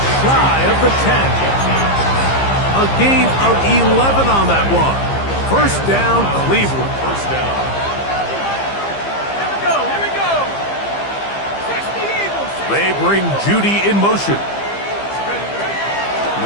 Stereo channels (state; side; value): late; right; 15 ms